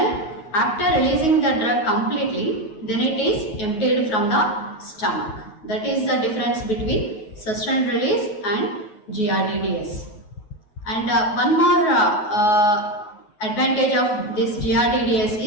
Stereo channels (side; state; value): right; late; 9.4 ms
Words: after releasing the drug completely, then it is emptied from the stomach. That is the difference between sustained release and GRDDS. And one more advantage of this GRDDS